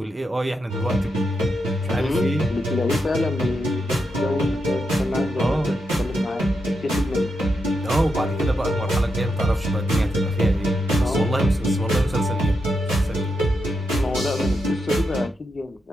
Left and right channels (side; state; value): both; normal; correlation 0.84